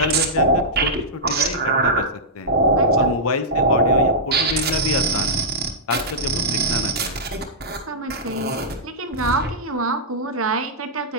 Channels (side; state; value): both; normal; correlation -0.11